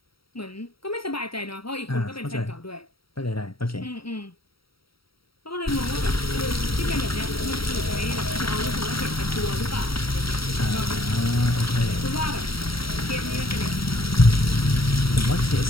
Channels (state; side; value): late; right; 0.75 ms